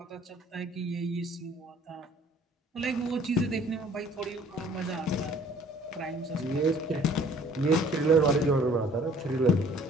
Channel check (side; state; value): both; normal; correlation 0.55